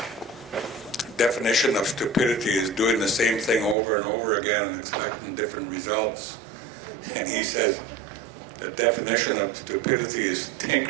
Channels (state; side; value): drops out; left; at 3.8 s